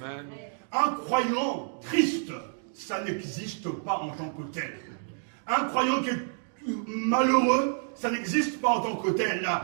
Un croyant triste, ça n'existe pas en tant que tel. Un croyant qui est malheureux, ça n'existe pas en tant que tel.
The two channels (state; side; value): silent; left; digital silence